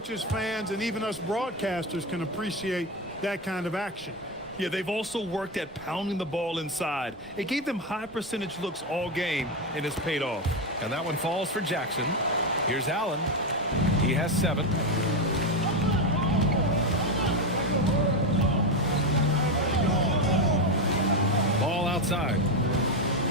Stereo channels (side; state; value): both; normal; correlation 0.12